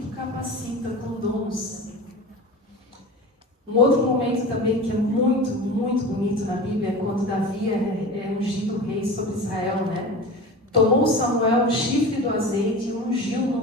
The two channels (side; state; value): both; normal; correlation 0.32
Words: capacita com dons. Um outro momento também que é muito, muito bonito na Bíblia é quando Davi é ungido rei sobre Israel, né? Tomou Samuel o chifre do azeite e ungiu no